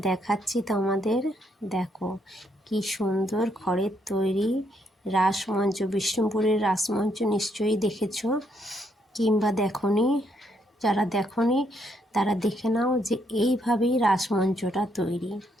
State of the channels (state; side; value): normal; both; correlation 0.74